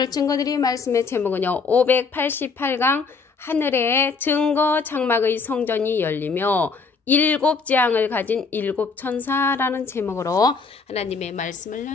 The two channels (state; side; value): quieter; right; 4.7 dB